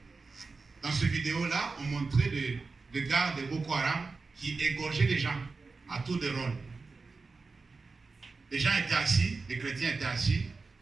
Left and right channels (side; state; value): left; quieter; 4.2 dB